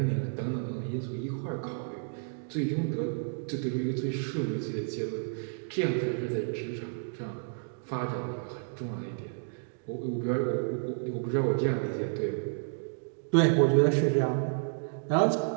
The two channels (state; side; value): silent; left; digital silence